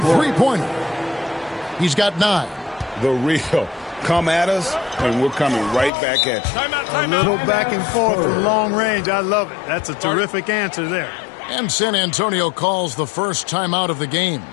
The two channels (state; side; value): drops out; right; at 5.9 s